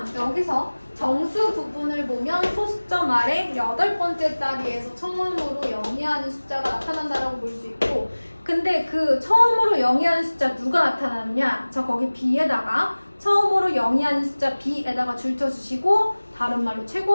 여기서 정수 부분을 보면 소수점 아래 8번째 자리에서 처음으로 영위하는 숫자가 나타난다라고 볼 수 있고, 근데 그 처음으로 영위하는 숫자 누가 나타나느냐? 저 거기 B에다가 처음으로 영위하는 숫자 B에다가 줄쳐주시고 다른 말로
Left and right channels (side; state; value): both; inverted; correlation -1.00